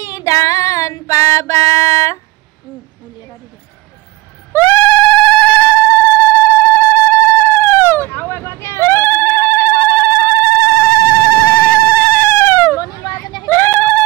দান পাবা উলিয়াবা দি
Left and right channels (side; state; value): left; quieter; 20.2 dB